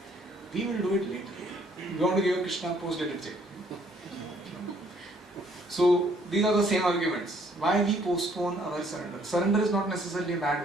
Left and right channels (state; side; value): normal; both; correlation 0.64